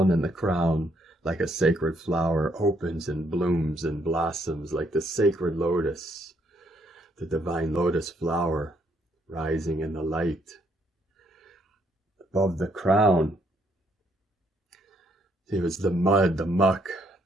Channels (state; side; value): normal; both; correlation 0.71